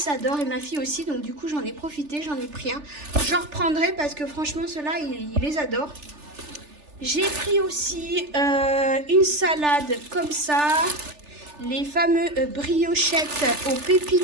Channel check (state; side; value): late; left; 3.4 ms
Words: adore et ma fille aussi, donc du coup j'en ai profité, j'en ai pris un. J'en reprendrai parce que franchement ceux-là il les adore. J'ai pris aussi une salade comme ça, les fameux briochettes aux